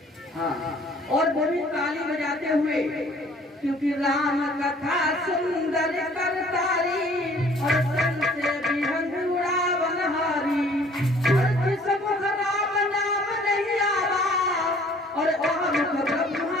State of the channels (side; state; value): both; normal; correlation 0.55